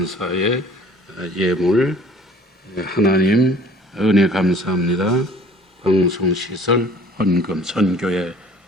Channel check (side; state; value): both; normal; correlation 0.51